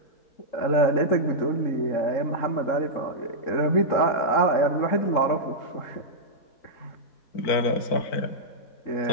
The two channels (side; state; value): right; late; 4.4 ms